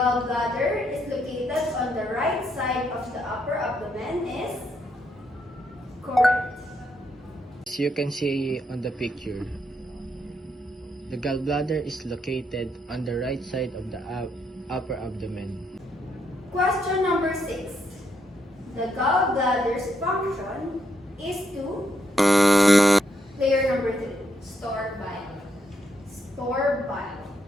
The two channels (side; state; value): both; normal; correlation 0.77